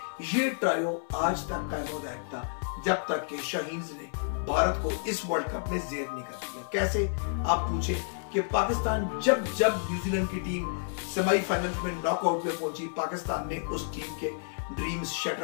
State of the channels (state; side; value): silent; right; 58 dB below the other